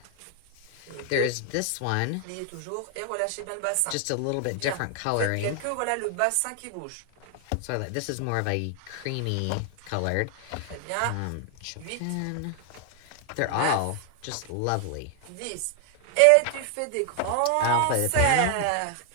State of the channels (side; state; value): both; different; correlation 0.00